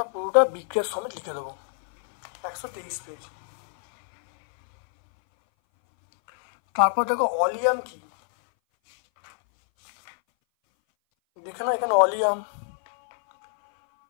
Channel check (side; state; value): right; silent; 60 dB below the other